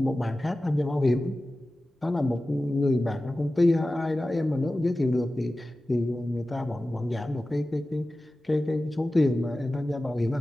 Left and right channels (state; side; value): normal; both; correlation 0.95